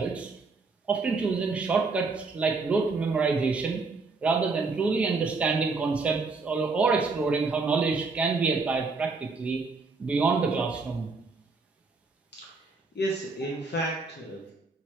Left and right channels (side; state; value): left; quieter; 4.0 dB